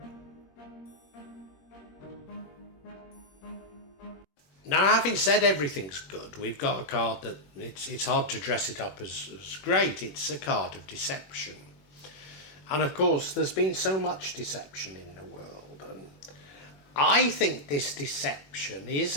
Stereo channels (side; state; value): right; late; 21 ms